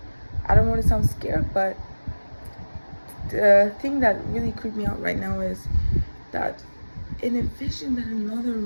I don't want to sound scared, but the thing that really creeped me out right now is that in a vision that another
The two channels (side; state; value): both; inverted; correlation -1.00